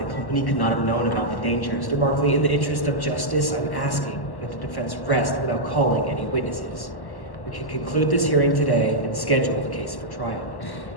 company could not have known about the danger. Mr. Markley, in the interest of justice, I'm asking that the defense rest without calling any witnesses. We can conclude this hearing today and schedule the case for trial.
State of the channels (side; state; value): right; late; 1.1 ms